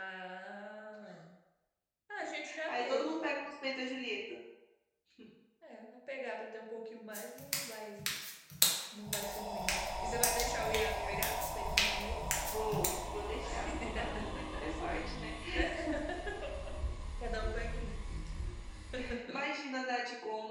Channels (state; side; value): identical; both; correlation 1.00